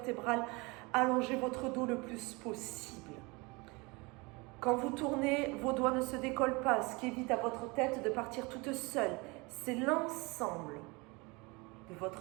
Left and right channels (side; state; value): left; quieter; 26.4 dB